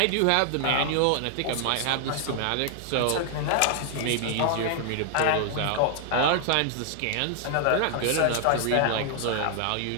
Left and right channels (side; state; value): both; different; correlation 0.00